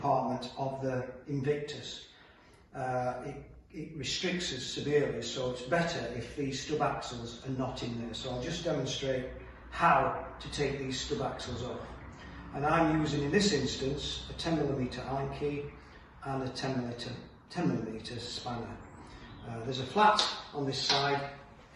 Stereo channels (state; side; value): identical; both; correlation 1.00